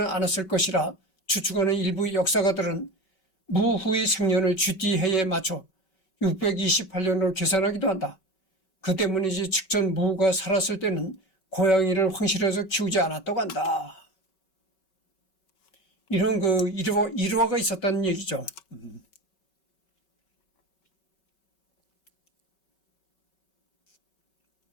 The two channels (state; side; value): late; right; 5.3 ms